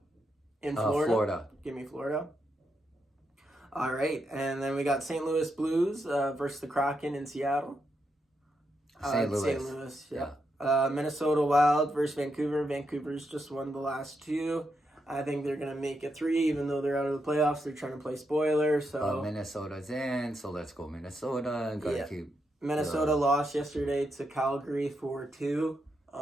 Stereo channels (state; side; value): normal; both; correlation 0.83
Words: In Florida. Florida. Give me Florida. All right. And then we got St. Louis Blues versus the Kraken in Seattle. St. Louis, yeah. Minnesota Wild versus Vancouver. Vancouver's just won the last two. I think they're going to make it 3, even though they're out of the playoffs. They're trying to play spoiler. So Minnesota's in, so let's go Minnesota. Keep Minnesota lost yesterday to Calgary 4-2.